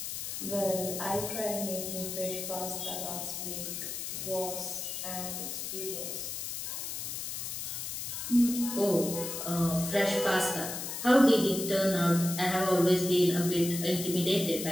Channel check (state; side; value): noise; left; hiss, 5 dB below the sound